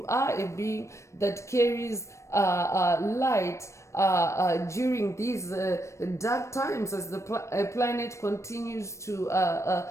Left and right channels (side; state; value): right; late; 0.14 ms